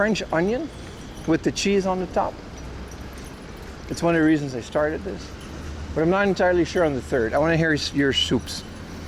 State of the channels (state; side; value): identical; both; correlation 1.00